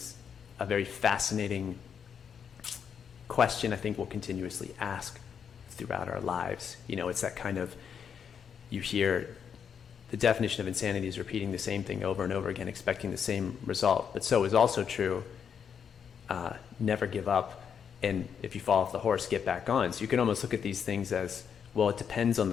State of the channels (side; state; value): right; quieter; 7.4 dB